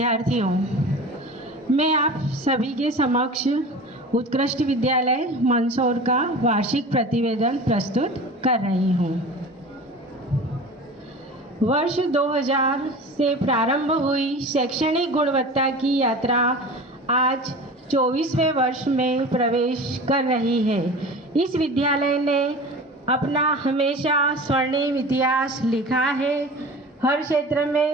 मैं आप सभी के समक्ष उत्कृष्ट विद्यालय मंदसौर का वार्षिक प्रतिवेदन प्रस्तुत कर रही हूँ। वर्ष 2000 से प्रारंभ हुई शैक्षणिक गुणवत्ता की यात्रा आज 24वें वर्ष में प्रवेश कर रही है। इस विद्यालय ने अपना हमेशा स्वर्णिम इतिहास लिखा है। हर क्षेत्र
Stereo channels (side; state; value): both; normal; correlation 0.36